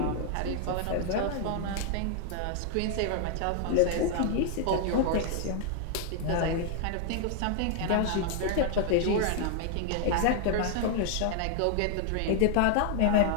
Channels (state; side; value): different; both; correlation 0.00